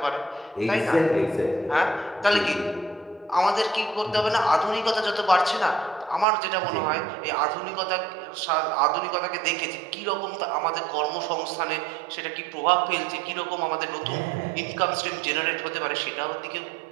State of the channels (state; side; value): drops out; left; at 6.2 s